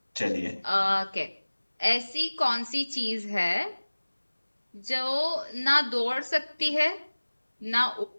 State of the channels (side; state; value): both; inverted; correlation -1.00